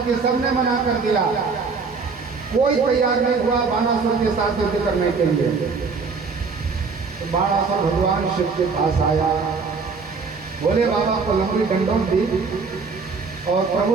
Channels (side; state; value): left; quieter; 4.8 dB